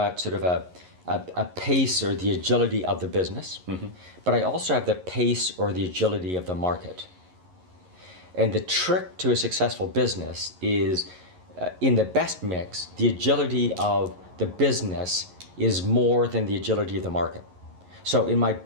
sort of a pace or the agility of the business, but I also have the pace or the agility of the market. And the trick to a successful business is in the best mix, the agility of the business is more than the agility of the market. So in my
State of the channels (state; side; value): late; left; 11 ms